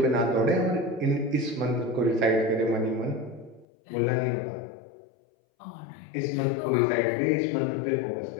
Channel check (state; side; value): drops out; right; at 3.7 s